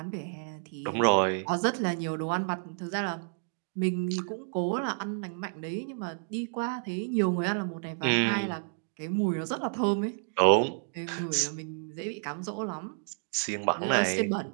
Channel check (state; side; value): silent; left; digital silence